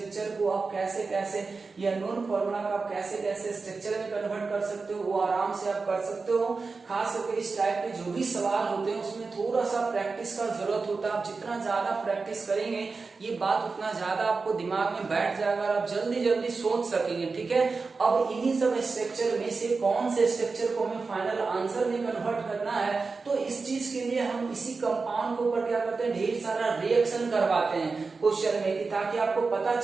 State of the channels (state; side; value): quieter; left; 4.3 dB